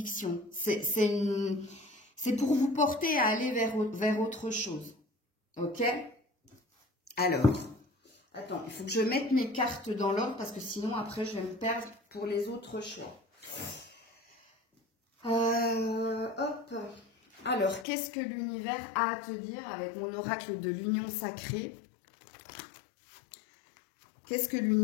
C'est pour vous porter à aller vers autre chose. Ok? Alors, attends, il faut que je mette mes cartes dans l'ordre parce que sinon, après, je vais me perdre pour les autres choix. Hop. Alors, qu'est-ce que l'univers a à te dire avec mon oracle de l'union sacrée? Qu'est-ce que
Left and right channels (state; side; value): drops out; right; at 17.9 s